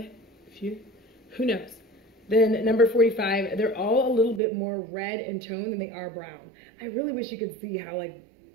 few, who knows? Then number 45, they're all a little bit more red in tone than they are brown. I really wish you could see how like,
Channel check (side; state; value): left; drops out; at 4.4 s